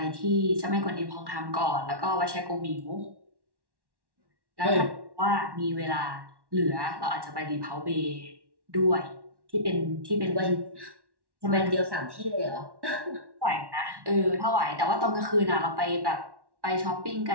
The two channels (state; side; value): late; left; 1.1 ms